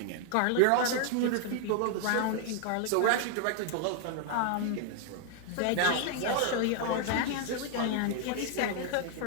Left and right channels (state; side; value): different; both; correlation 0.00